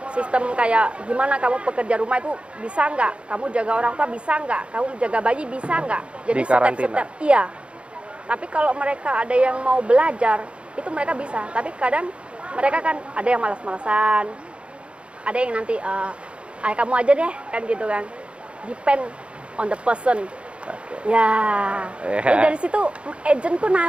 sistem kayak gimana kamu pekerja rumah itu bisa nggak, kamu jaga orang tua bisa nggak, kamu jaga bayi bisa nggak. Jadi step-step. Iya. Tapi kalau mereka ada yang mau belajar itu mereka bisa. Tapi kadang mereka kan ada yang malas-malasan, ada yang nanti kamu aja deh kan gitu kan. Depend on the person. Ya. Jadi dari situ agentku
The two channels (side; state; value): left; late; 0.059 ms